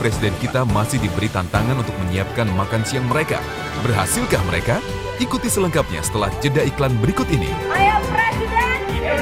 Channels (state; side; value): identical; both; correlation 1.00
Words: kita masih diberi tantangan untuk menyiapkan makan siang mereka. Berhasilkah mereka? Ikuti selengkapnya setelah jeda iklan berikut ini. Ayo Presiden,